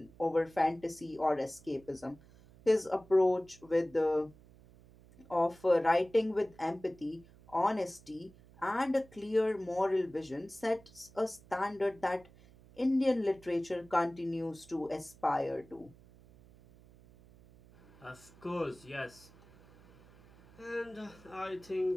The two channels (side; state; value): right; noise; hum, 24 dB below the sound